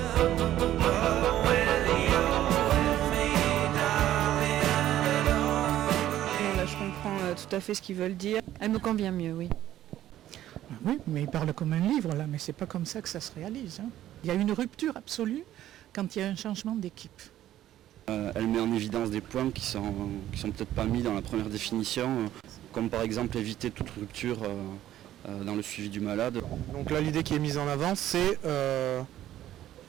Non, là je comprends tout à fait ce qu'ils veulent dire. Elle me convient mieux, oui. Oui, mais il parle comme un livre là, mais c'est pas comme ça que ça se réalise. Il y a une rupture absolue quand il y a un changement d'équipe. Elle met en évidence des points qui sont peut-être pas mis dans la première définition, comme par exemple éviter toute rupture dans le suivi du malade. Donc là l'idée qui est mise en avant c'est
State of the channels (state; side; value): quieter; left; 12.8 dB